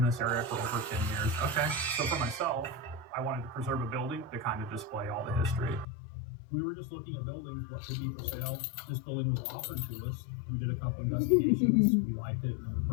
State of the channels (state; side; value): drops out; right; at 5.9 s